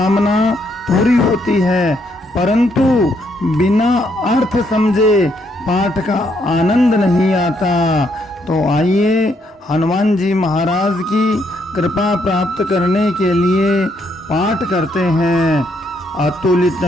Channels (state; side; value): normal; both; correlation 0.74